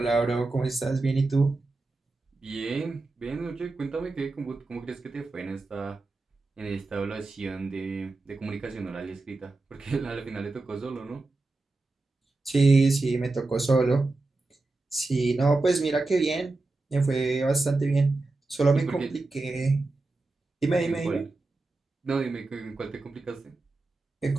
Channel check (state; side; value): quieter; left; 3.3 dB